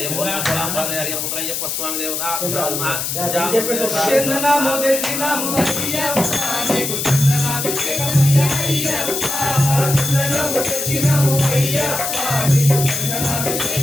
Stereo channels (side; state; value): left; noise; hiss, 2 dB below the sound